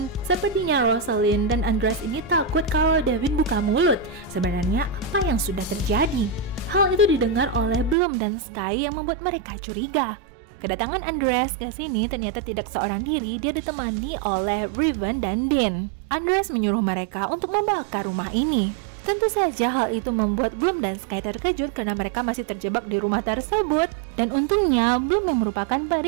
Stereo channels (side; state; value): left; drops out; at 8.0 s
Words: sepertinya Rosalind dan Andreas ini takut kalau Devin buka mulut. Sebenarnya apa yang sudah terjadi? Hal itu didengar oleh Bloom dan Sky yang membuat mereka curiga. Kedatangan Andreas ke sini ternyata tidak seorang diri, dia ditemani oleh Riven dan Dean. Andreas menyuruh mereka untuk membakar rumah ini. Tentu saja hal itu membuat Bloom dan Sky terkejut karena mereka masih terjebak di rumah tersebut. Dan untungnya Bloom yang merupakan